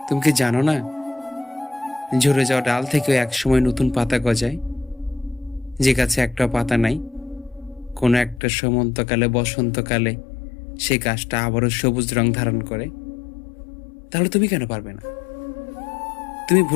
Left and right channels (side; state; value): right; drops out; at 8.4 s